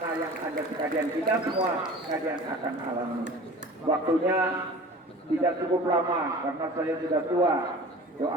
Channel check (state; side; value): normal; both; correlation 0.41